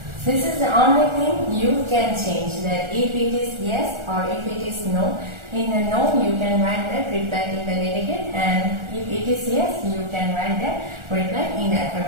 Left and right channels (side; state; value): left; late; 1.4 ms